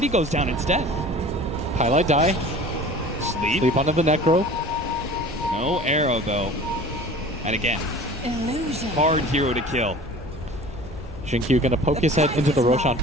goes down instead. Highlight die. Sleep onto the Necro. No arrow, though. And again, hard hero to kill. Jinkyu gonna poke his head into the Roshan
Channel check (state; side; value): normal; both; correlation 0.42